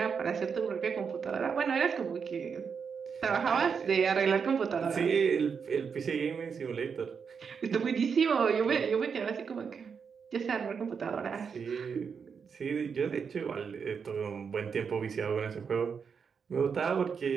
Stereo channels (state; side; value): quieter; left; 6.2 dB